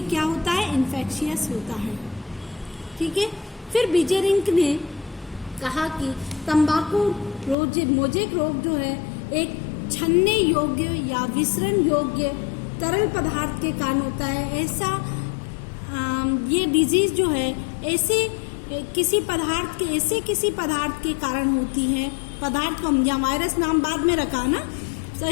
क्या होता है? इन्फेक्शियस होता है, ठीक है। फिर बीजेरिंक ने कहा कि तंबाकू मोज़ेक रोग जो है एक छन्ने योग्य या विसरण योग्य तरल पदार्थ के कारण होता है। ये डिजीज जो है ऐसे किसी पदार्थ के कारण होती है। पदार्थ को हम या वायरस नाम बाद में रखा ना, तो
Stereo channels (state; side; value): drops out; right; at 7.6 s